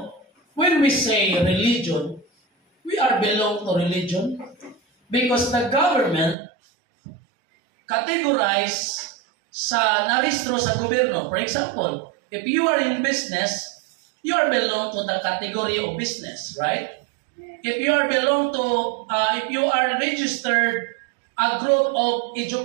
when we say religion, we are belong to religion because the government categorize sa naristro sa gobyerno. For example, if you are in business, you are belong to the category of business, right? If you are belong to, if you are registered a group of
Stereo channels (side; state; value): left; drops out; at 6.4 s